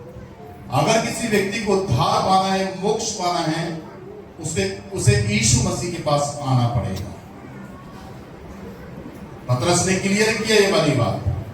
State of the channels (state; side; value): identical; both; correlation 1.00